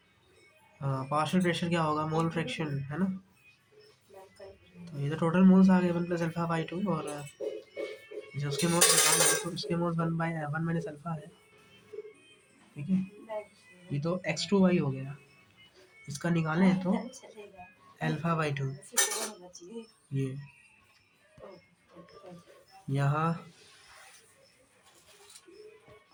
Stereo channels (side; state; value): both; identical; correlation 1.00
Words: पार्शियल प्रेशर क्या होगा, मोल फ्रैक्शन है ना, तो ये तो टोटल मोल्स आ गए 1 + अल्फा/2, और जो उसके मोल्स निकाल है तो उसके मोल्स 1 - अल्फा है, ठीक है। ये तो x2y हो गया, इसका निकालें तो अल्फा/2, ये यहाँ